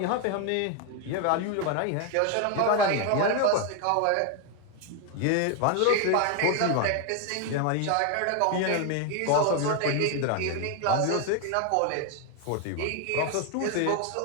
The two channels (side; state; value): both; different; correlation 0.01